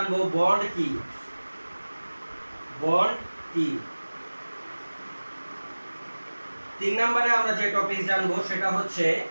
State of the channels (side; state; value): both; inverted; correlation -1.00